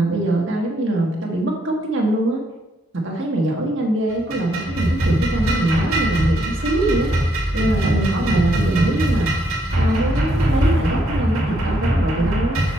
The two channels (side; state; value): both; normal; correlation 0.74